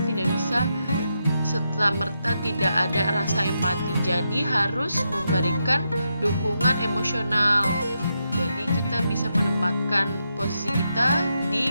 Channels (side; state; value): both; inverted; correlation -0.84